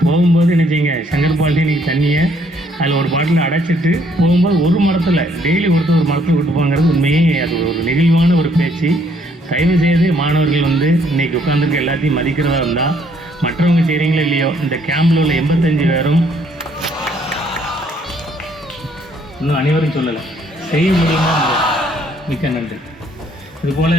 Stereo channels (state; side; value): normal; both; correlation 0.66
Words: போகும்போது என்ன செய்யுங்க, சங்கர் பாட்டில் நீங்கள் தண்ணியை அதில் ஒரு பாட்டில் அடைச்சிட்டு போகும்போது ஒரு மரத்தில் டெய்லி ஒருத்தர் ஒரு மரத்தில் விட்டு போங்கிறது உண்மையே அது ஒரு நெகிழ்வான ஒரு பேச்சு. தயவு செய்து மாணவர்கள் வந்து இன்றைக்கி உட்காந்துருக்க எல்லாத்தையும் மதிக்கிறதா இருந்தால் மற்றவங்க செய்கிறீங்களோ இல்லையோ, இந்த கேம்பில் உள்ள 85 பேரும் இன்னும் அனைவரும் சொல்லலை, செய்ய முடியுமா? மிக்க நன்றி. இதுபோல்